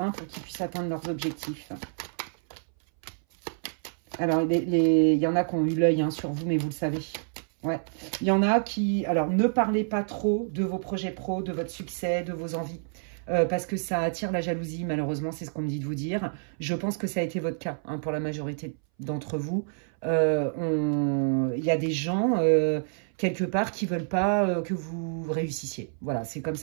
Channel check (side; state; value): left; silent; 59 dB below the other